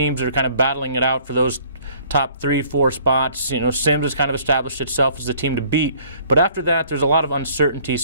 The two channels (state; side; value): inverted; both; correlation -0.57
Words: that are kind of battling it out for those top 3, 4 spots. You know, Sims has kind of established itself as the team to beat, but after that, there's a lot of uncertainty.